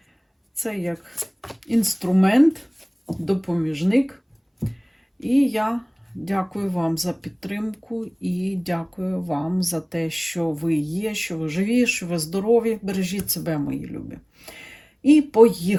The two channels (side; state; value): both; identical; correlation 1.00